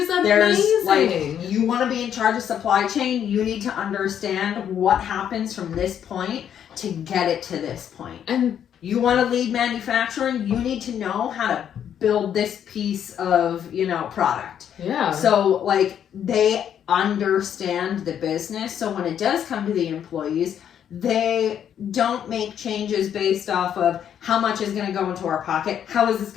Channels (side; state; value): right; quieter; 9.2 dB